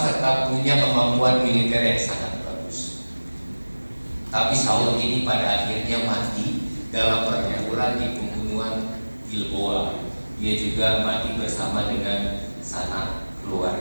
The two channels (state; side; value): inverted; both; correlation -1.00